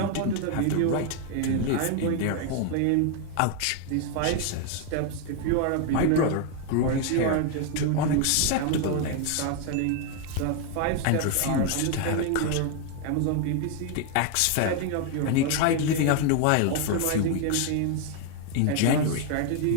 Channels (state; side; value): different; both; correlation 0.01